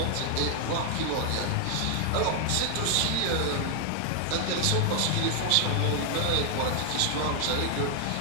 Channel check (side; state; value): both; different; correlation 0.00